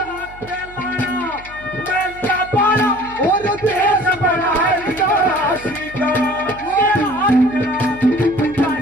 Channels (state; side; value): noise; right; hum, 20 dB below the sound